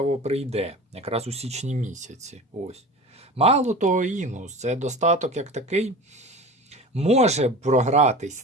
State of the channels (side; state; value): both; normal; correlation 0.35